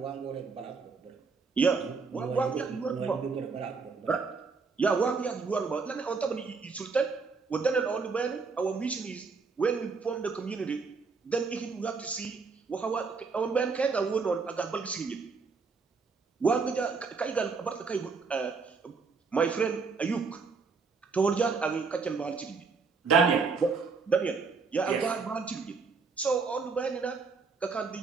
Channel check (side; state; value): left; quieter; 4.8 dB